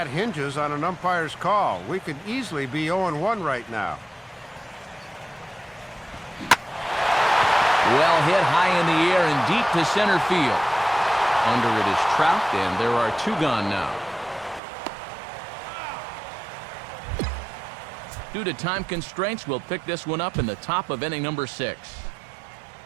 hinges on an umpire's call. We could easily be 0-1 right now. Well hit high in the air and deep to center field. Under it is Trout, and there are 2 gone now. Due to time constraints, we'll pick this one up in the top of inning number 6.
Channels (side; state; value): left; drops out; at 14.6 s